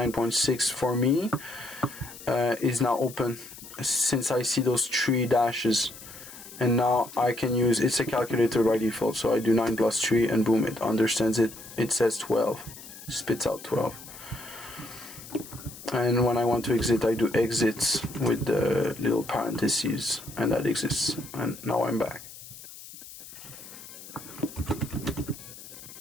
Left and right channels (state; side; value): noise; left; hiss, 16 dB below the sound